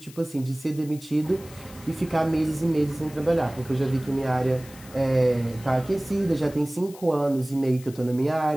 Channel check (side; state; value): left; noise; hiss, 20 dB below the sound